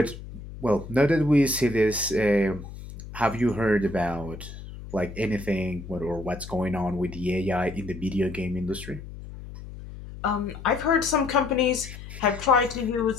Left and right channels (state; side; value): noise; left; hum, 13 dB below the sound